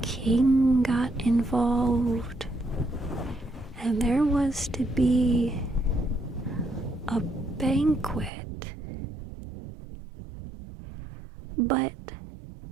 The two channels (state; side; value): drops out; left; at 8.3 s